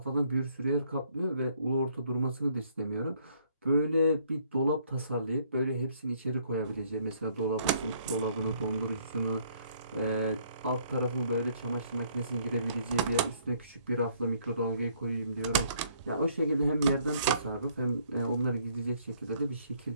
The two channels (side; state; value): both; inverted; correlation -0.65